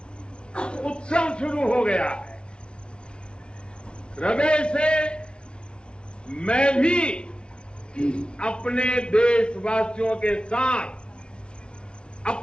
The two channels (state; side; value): late; right; 0.056 ms